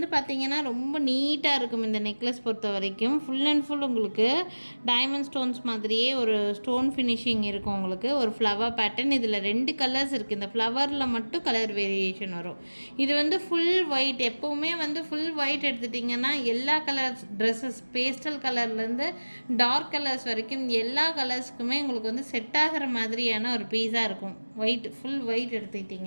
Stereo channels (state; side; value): inverted; both; correlation -1.00